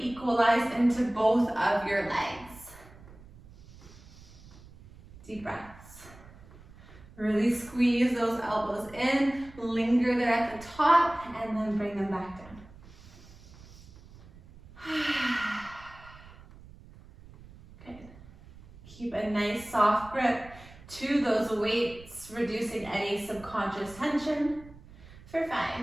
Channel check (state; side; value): noise; right; rumble, 20 dB below the sound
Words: equalized into both of your legs. Deep breaths. Really squeeze those elbows in, linger there at the top, and then bring them back down. Good. Keep a nice soft grip to those weights, reducing any subconscious tension. For 5,